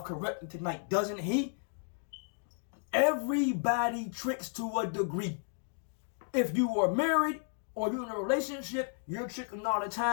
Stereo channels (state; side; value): silent; right; 56 dB below the other